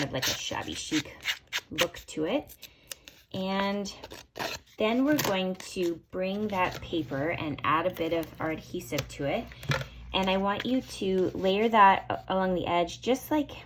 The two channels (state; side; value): identical; both; correlation 1.00